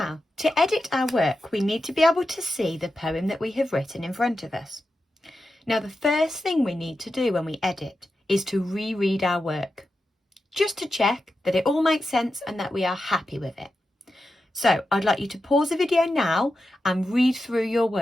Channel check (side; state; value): both; normal; correlation 0.90